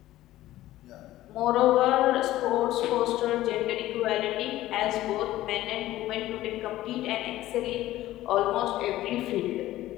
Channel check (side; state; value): right; quieter; 15.2 dB